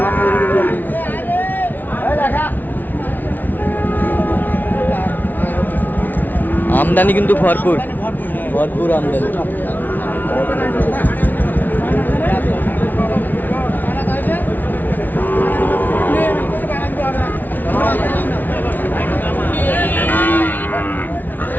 আমদানি কিন্তু ভরপুর ভরপুর আমদানি।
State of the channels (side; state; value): right; late; 0.084 ms